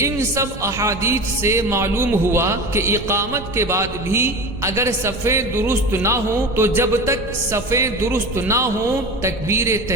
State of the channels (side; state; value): right; noise; rumble, 13 dB below the sound